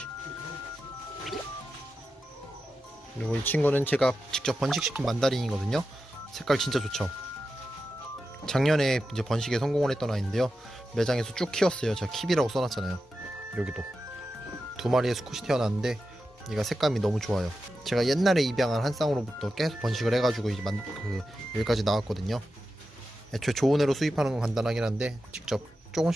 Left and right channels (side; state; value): both; normal; correlation 0.91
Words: 그리고 이 친구는 제가 직접 번식시킨 만다린이거든요. 색깔 진짜 좋죠. 작년에 이제 번식에 성공을 했던 아이인데요. 매장에서 쭉 키웠어요. 제가 킵이라고 써놨잖아요. 여기도 2마리의 수컷이 태어났는데 얘가 색감이 너무 좋아요. 제가 옛날에 입양한 한 쌍으로부터 계속 번식을 해가지고 이제 여기까지 나왔거든요. 애초에 좋은 애로 수입하는 건 간단하긴 한데 직접